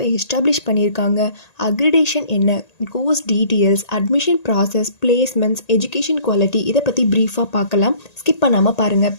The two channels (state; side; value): late; right; 1.8 ms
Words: எஸ்டாப்ளிஷ் பண்ணியிருக்காங்க, அக்ரிடேஷன் என்ன, course details, admission process, placements, education quality இதை பற்றி ப்ரீஃபாக பார்க்கலாம். ஸ்கிப் பண்ணாமல் பாருங்கள்.